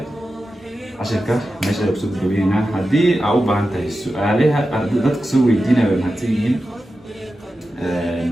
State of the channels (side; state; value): both; normal; correlation 0.92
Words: عشان كده ماشي أقصد جبينا هدي أو بعنت السؤالها ضدك سوي دينا بالمهتين